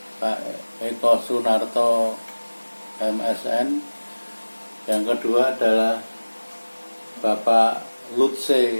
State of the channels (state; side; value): inverted; both; correlation -1.00